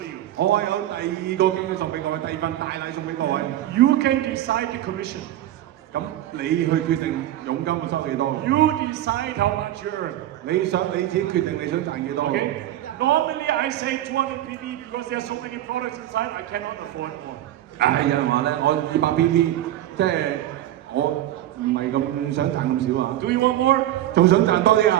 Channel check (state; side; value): quieter; left; 13.2 dB